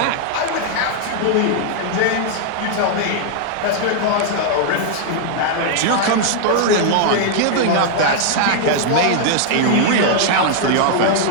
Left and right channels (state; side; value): different; both; correlation -0.01